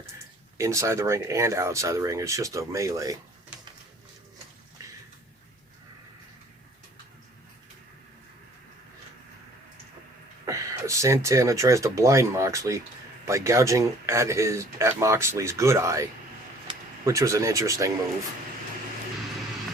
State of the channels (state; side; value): normal; both; correlation 0.54